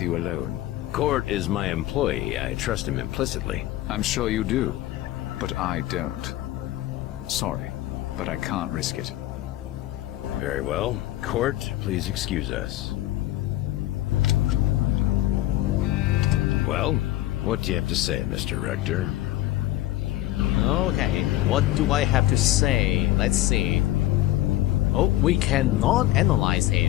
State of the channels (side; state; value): right; quieter; 15.2 dB